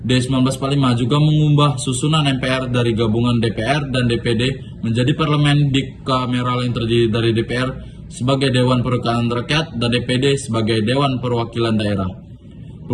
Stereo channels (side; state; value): both; identical; correlation 1.00